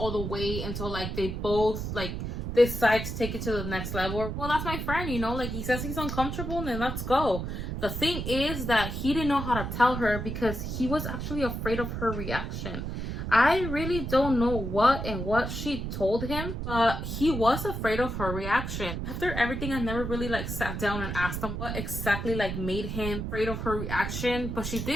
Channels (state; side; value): noise; right; rumble, 4 dB below the sound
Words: the way until like they both like decide to take it to the next level. Well, that's my friend, you know, like he says he's uncomfortable, then let's go. The thing is that he didn't know how to tell her because he was actually afraid of her reaction. I really don't know what she told him, but he was afraid of her reaction. After everything, I never really like sat down and asked him what exactly like made him afraid of her reaction, but she